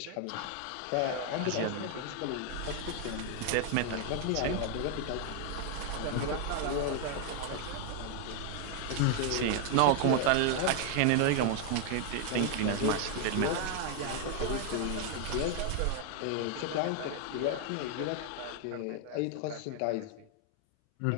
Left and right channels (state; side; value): different; both; correlation 0.00